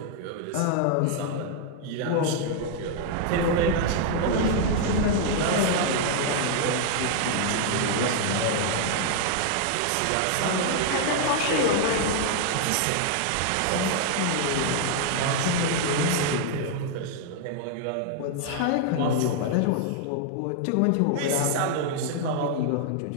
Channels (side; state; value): both; different; correlation 0.00